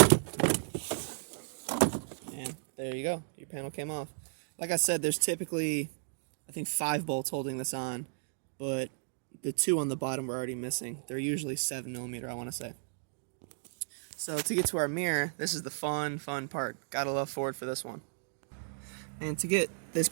And there you go. Your panel came off. Like I said, there's typically, I think, 5 bolts holding this on, but the 2 on the bottom were already missing. They're usually 7mm, I want to say. So to get to our mirror, this is the fun part. Gotta love Ford for this one. And to get this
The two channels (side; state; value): left; silent; digital silence